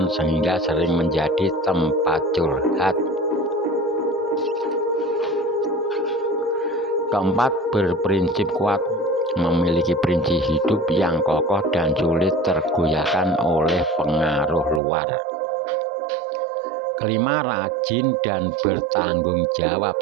sehingga sering menjadi tempat curhat. Keempat, berprinsip kuat, memiliki prinsip hidup yang kokoh dan sulit tergoyahkan oleh pengaruh luar. Kelima, rajin dan bertanggung jawab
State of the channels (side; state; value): left; drops out; at 14.8 s